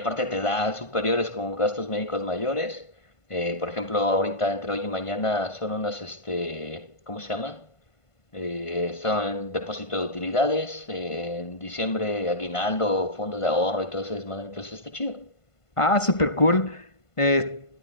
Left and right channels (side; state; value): right; late; 1.5 ms